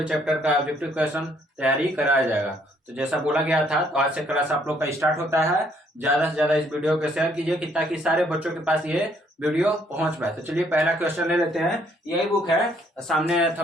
चैप्टर का ऑब्जेक्टिव क्वेश्चन तैयारी कराया जाएगा। तो जैसा बोला गया था, तो आज से क्लास आप लोग का स्टार्ट होता है। ज्यादा से ज्यादा इस वीडियो को शेयर कीजिए कि ताकि सारे बच्चों के पास ये वीडियो पहुंच पाए। तो चलिए पहला क्वेश्चन ले लेते हैं। यही बुक है, सामने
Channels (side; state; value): both; normal; correlation 0.67